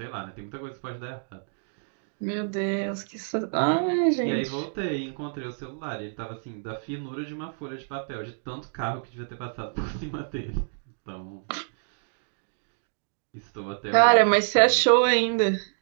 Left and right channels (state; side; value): silent; left; digital silence